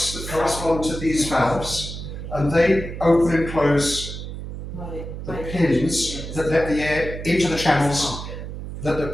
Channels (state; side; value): noise; right; hum, 8 dB below the sound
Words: that correspond to these valves, and they open and close the pins that let the air into the channels that the